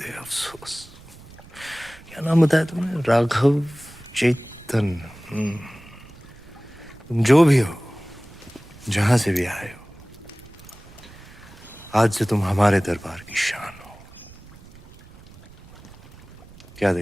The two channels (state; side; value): noise; right; rumble, 22 dB below the sound